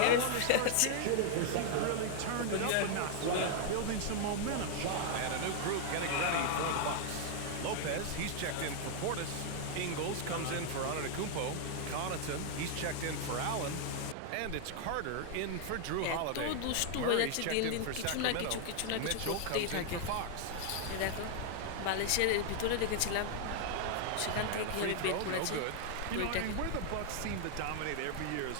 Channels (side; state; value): both; different; correlation 0.00